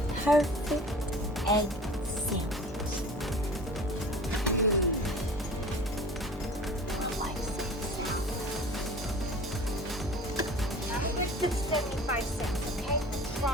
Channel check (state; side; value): normal; both; correlation 0.42